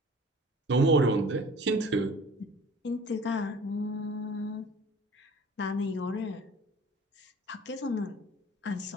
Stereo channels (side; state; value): both; normal; correlation 0.46